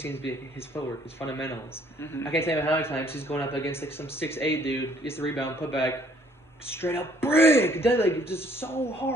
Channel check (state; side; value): normal; both; correlation 0.62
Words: to be his footwork, his fundamentals. Mm-hmm. I can't tell you how many times he's going up against like some 6'8" dude, gets the rebound, put back, straight up brick, just so